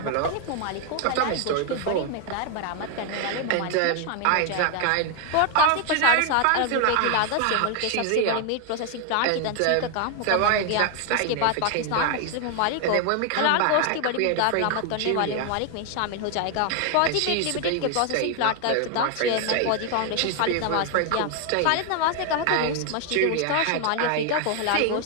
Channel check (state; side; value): different; both; correlation 0.00